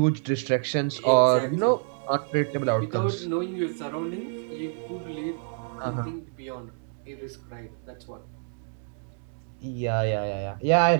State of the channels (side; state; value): left; silent; digital silence